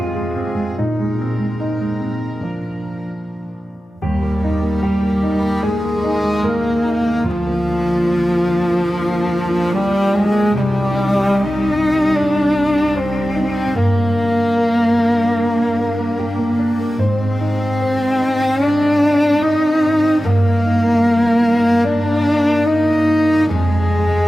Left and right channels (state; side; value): normal; both; correlation 0.94